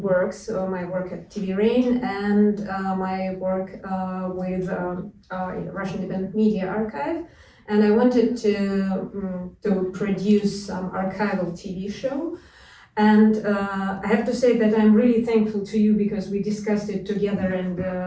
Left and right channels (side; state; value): both; identical; correlation 1.00